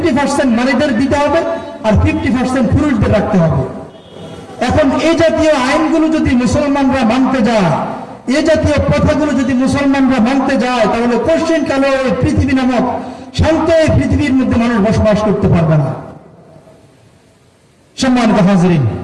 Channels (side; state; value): both; identical; correlation 1.00